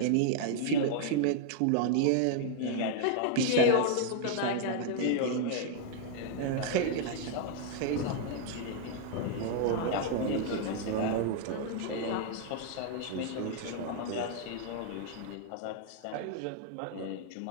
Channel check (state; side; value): different; both; correlation 0.00